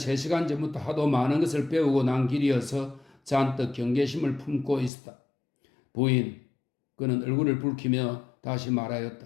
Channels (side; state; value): right; drops out; at 4.9 s